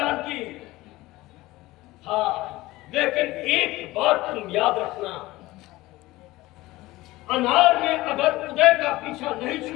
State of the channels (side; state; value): right; quieter; 18.7 dB